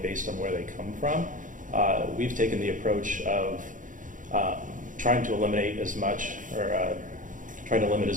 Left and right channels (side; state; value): left; late; 0.38 ms